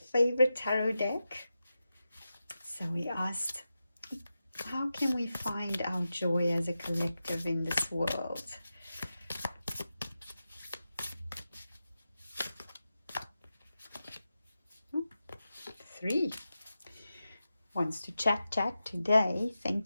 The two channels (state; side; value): inverted; both; correlation -0.91